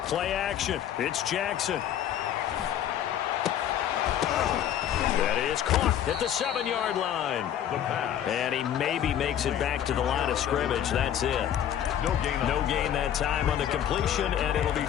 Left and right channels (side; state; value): right; quieter; 10.4 dB